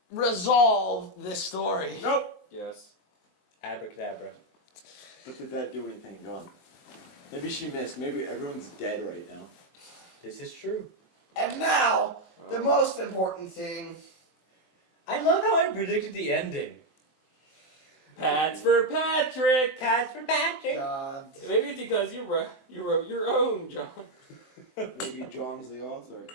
resolve this story? Nope. Yes. Abracadabra. But did that do anything, John? Maybe she missed. Maybe everyone's dead right now. This is true. And now, the most important thing. I love how I predicted the ending. Pats for Patrick! Cats for Patrick. God. Maybe it's because you wrote your own, John. Maybe John's the author.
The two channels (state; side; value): late; right; 23 ms